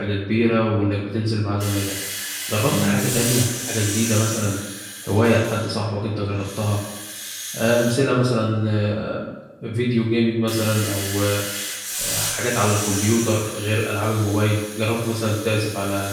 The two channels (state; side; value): identical; both; correlation 1.00